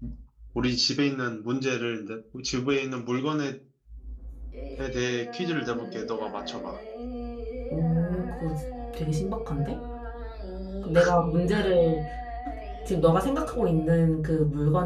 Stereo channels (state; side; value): identical; both; correlation 1.00